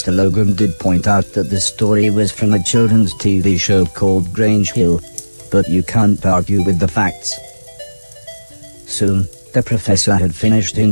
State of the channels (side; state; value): both; inverted; correlation -1.00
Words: Logan did point out that the story was from a children's TV show called Grange Hill, but you can't argue with the facts. Soon, the professor had finished